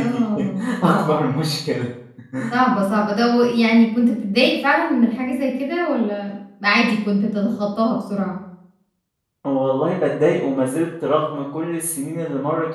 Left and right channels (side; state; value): both; identical; correlation 1.00